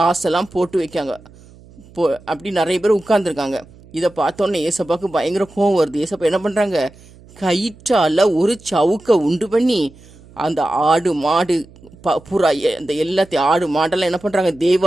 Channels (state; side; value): noise; right; hum, 24 dB below the sound